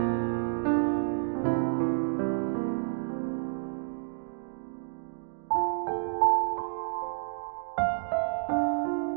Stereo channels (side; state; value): left; silent; digital silence